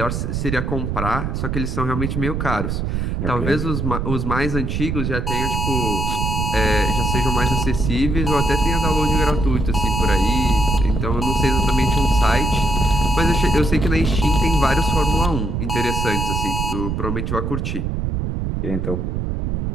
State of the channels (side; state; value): right; noise; rumble, 1 dB below the sound